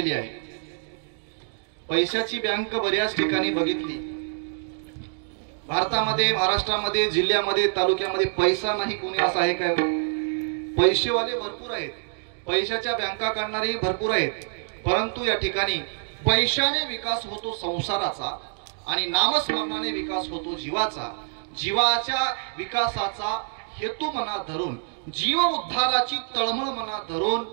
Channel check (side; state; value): left; silent; digital silence